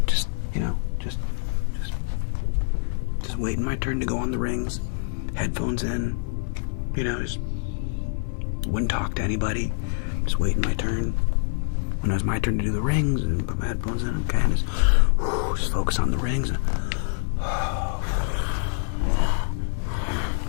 just waiting my turn to go on the rings, headphones in, just wouldn't talk to anybody, just waiting my turn. When it was my turn to do the rings, and put my headphones in, okay, and just focus on the rings,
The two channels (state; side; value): silent; right; digital silence